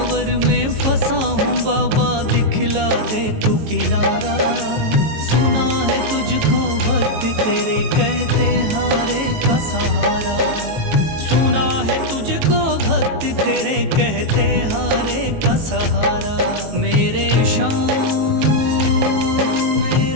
में फंसा हूँ बाबा दिखला दे तू किनारा। सुना है तुझको भक्त तेरे कहते हारे का सहारा। सुना है तुझको भक्त तेरे कहते हारे का सहारा। मेरे शाम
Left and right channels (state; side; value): late; left; 18 ms